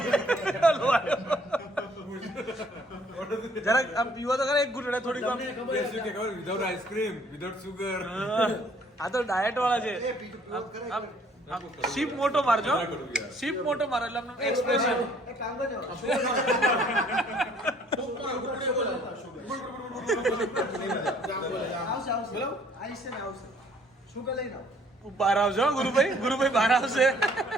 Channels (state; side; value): normal; both; correlation 0.60